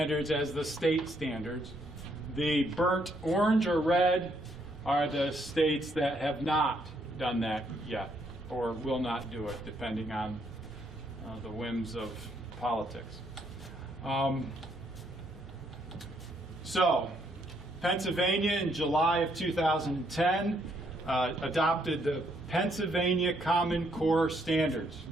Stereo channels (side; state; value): both; normal; correlation 0.72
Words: as the state standards. The burnt orange or red are the states that have not done that yet, or will not do it, depending on the whims of politics. So, Pennsylvania in July of 2010 adopted the Pennsylvania Common Core Standards.